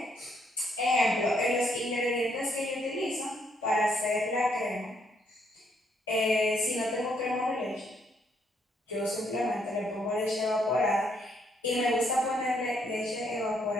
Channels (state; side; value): normal; both; correlation 0.72